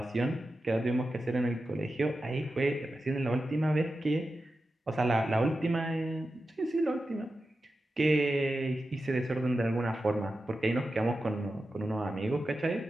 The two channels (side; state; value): both; normal; correlation 0.92